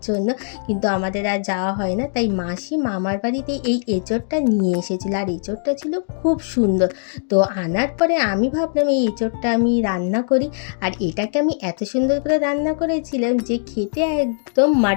জন্য, কিন্তু আমাদের আর যাওয়া হয় না। তাই মাসি মামার বাড়িতে এই এঁচোড়টা নিয়ে এসেছিল, আর এঁচোড়টা ছিল খুব সুন্দর। তো আনার পরে আমি ভাবলাম এই এঁচোড়টা আমি রান্না করি। আর এটাকে আমি এত সুন্দর করে রান্না করেছিলাম যে খেতে একদম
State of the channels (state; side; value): silent; right; digital silence